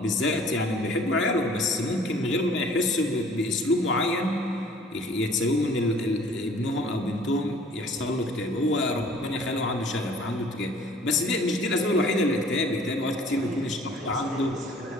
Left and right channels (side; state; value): both; normal; correlation 0.53